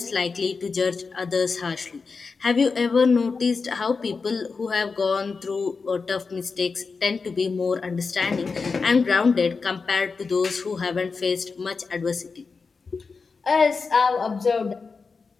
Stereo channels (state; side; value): quieter; right; 4.7 dB